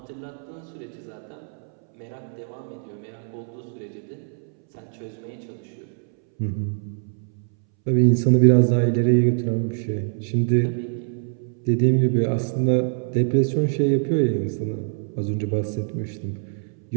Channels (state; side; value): silent; left; 63 dB below the other